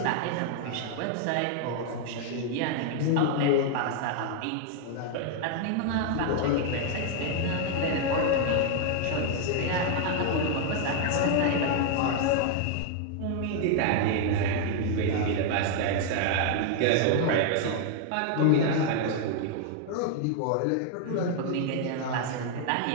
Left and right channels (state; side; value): different; both; correlation 0.00